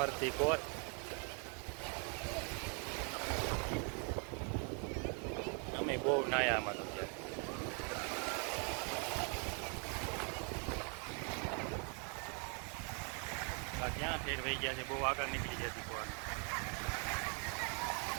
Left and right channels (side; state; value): left; quieter; 37.8 dB